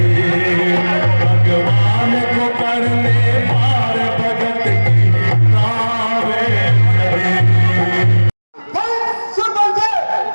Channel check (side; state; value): both; inverted; correlation -1.00